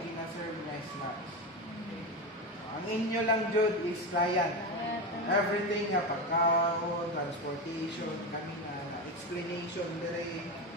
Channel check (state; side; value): normal; both; correlation 0.18